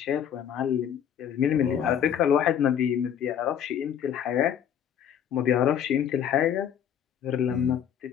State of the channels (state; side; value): quieter; right; 9.1 dB